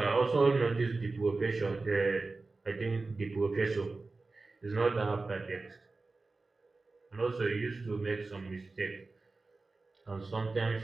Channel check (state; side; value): quieter; left; 3.6 dB